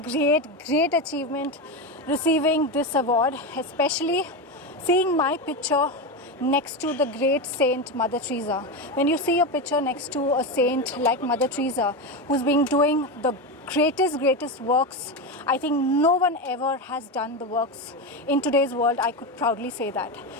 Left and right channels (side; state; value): both; normal; correlation 0.16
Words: great achievement receiving this award, especially seeing my picture next to the great saint Mother Teresa. When you see a picture next to a saint like Mother Teresa, who's been doing the greatest works, I think no one ever has done the works in today's world. I could proudly say that.